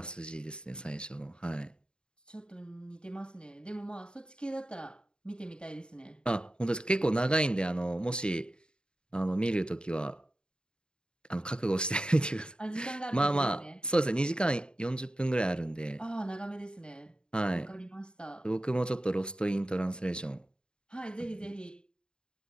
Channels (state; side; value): late; right; 0.050 ms